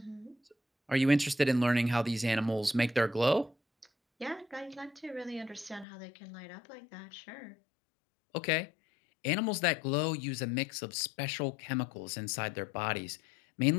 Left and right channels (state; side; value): drops out; right; at 5.9 s